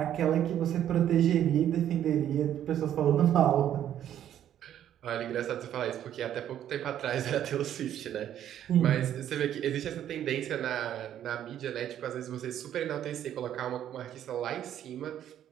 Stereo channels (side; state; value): left; quieter; 10.8 dB